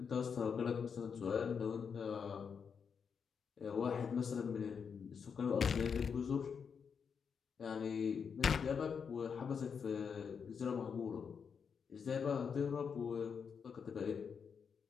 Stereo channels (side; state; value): right; quieter; 6.5 dB